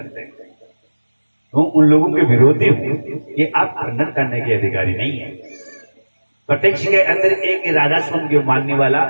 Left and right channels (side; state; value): both; inverted; correlation -1.00